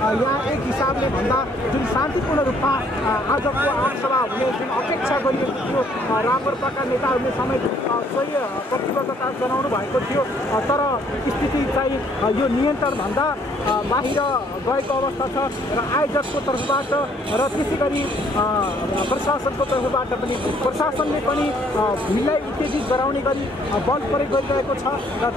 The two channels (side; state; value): both; normal; correlation 0.64